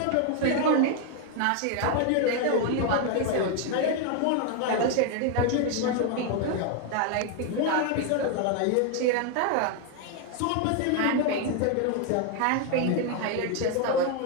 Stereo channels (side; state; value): both; different; correlation 0.01